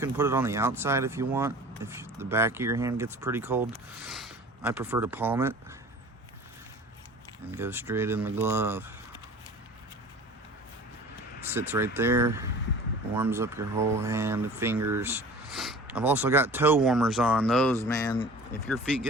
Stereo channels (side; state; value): both; normal; correlation 0.43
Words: put it on the outside if you want, if the back of your hand gets pretty cold. I prefer to palm it and go straight in the glove. Sits right there, warms up your whole hand and fingers. I've also got toe warmers on. Those, man, if your feet